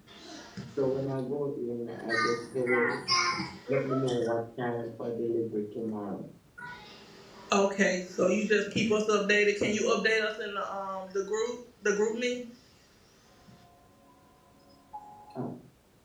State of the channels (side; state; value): both; identical; correlation 1.00